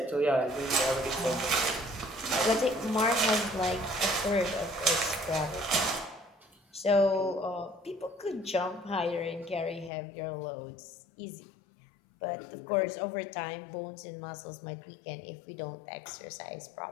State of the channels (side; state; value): right; drops out; at 9.9 s